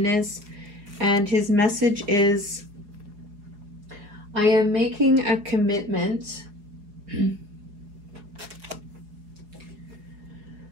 is. And his message is, I am making a commitment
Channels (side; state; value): left; late; 4.8 ms